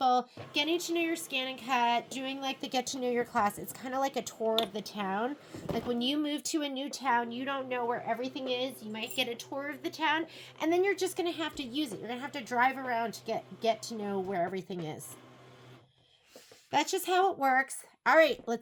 getting to know your scan and cut, doing like the get to know your class, it's kind of like a tour of the town. Like when you move to a new town, you don't know where everything is. You might get a tour of the town, and then you're just going to have to use it. You're going to have to drive around to get to know where everything is. That's just how it works. All right,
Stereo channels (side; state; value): both; identical; correlation 1.00